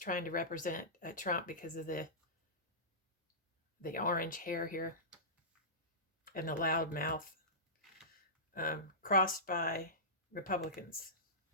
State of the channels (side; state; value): both; normal; correlation -0.19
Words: to represent Trump because of the orange hair here and the loud mouth. Crossed by Republicans.